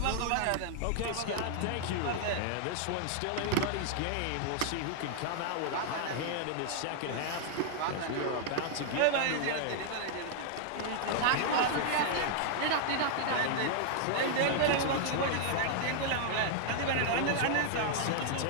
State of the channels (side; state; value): both; different; correlation -0.01